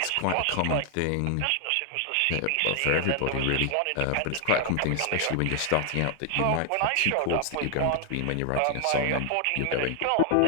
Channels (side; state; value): both; different; correlation 0.00